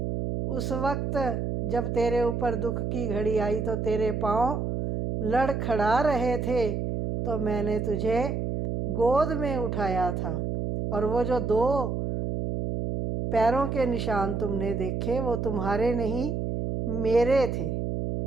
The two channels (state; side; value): noise; right; hum, 2 dB below the sound